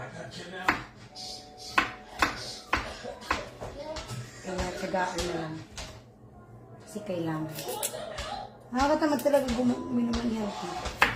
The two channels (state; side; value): identical; both; correlation 1.00